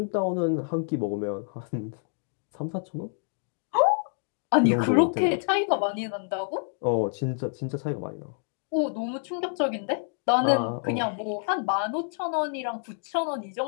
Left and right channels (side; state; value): right; silent; 60 dB below the other